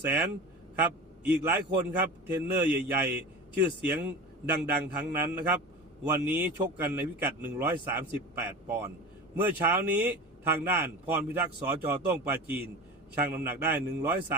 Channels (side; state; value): both; normal; correlation 0.32